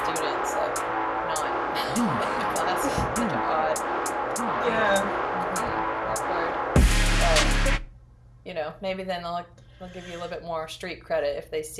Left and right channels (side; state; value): both; identical; correlation 1.00